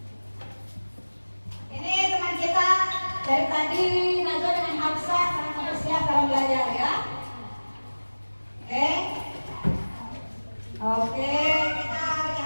Ini teman kita dari tadi Najwa dengan Hafsah sangat bersiap dalam belajar ya. Oke. Oke, kita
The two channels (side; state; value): both; inverted; correlation -1.00